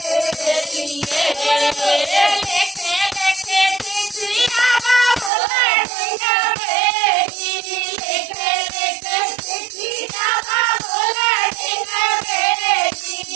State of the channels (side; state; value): left; drops out; at 5.3 s